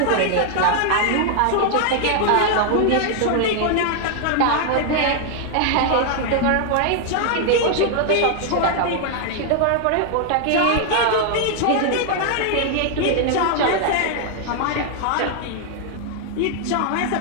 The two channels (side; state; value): both; different; correlation 0.00